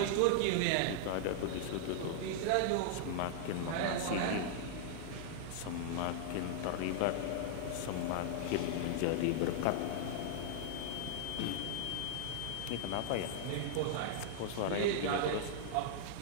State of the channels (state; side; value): different; both; correlation -0.01